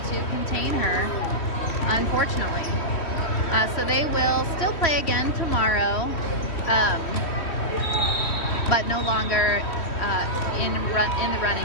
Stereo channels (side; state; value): right; late; 3.1 ms